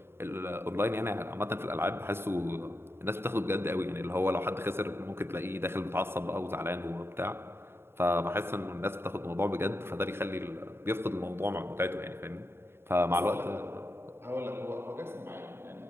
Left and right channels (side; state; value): left; late; 0.11 ms